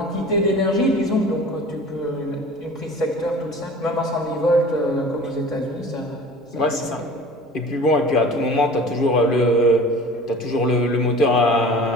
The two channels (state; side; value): normal; both; correlation 0.42